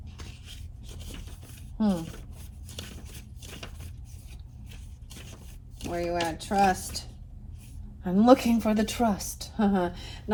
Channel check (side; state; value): both; identical; correlation 1.00